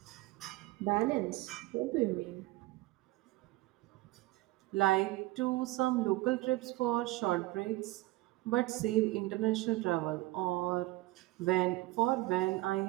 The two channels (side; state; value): left; quieter; 19.1 dB